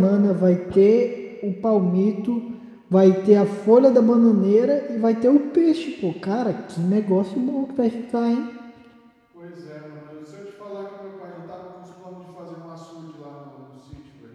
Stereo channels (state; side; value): identical; both; correlation 1.00